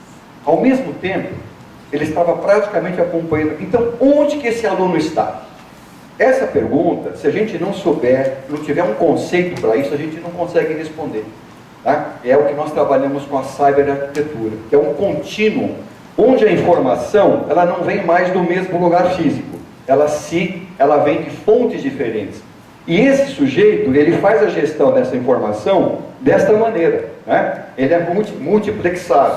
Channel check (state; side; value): identical; both; correlation 1.00